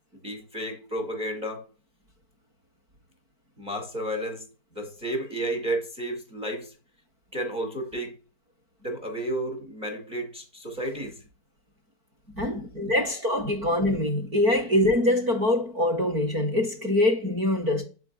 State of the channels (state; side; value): late; left; 4.5 ms